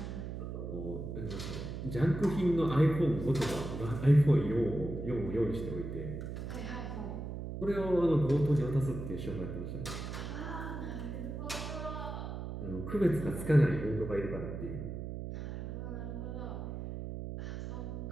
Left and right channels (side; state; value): right; noise; hum, 6 dB below the sound